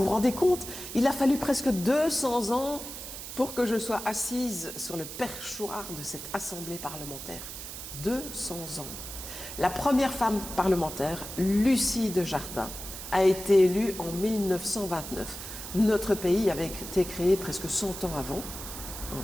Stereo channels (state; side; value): noise; right; hiss, 9 dB below the sound